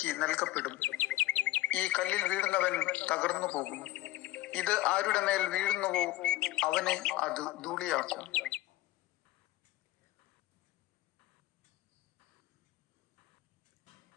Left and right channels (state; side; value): quieter; right; 16.4 dB